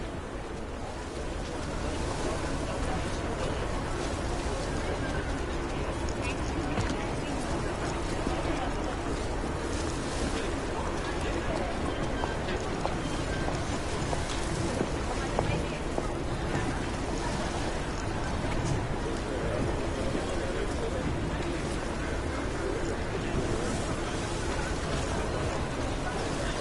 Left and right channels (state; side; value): identical; both; correlation 1.00